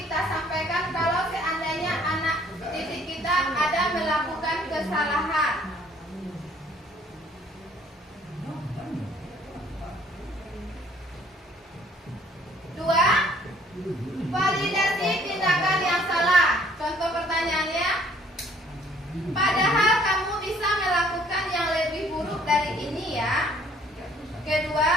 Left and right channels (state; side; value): normal; both; correlation 0.60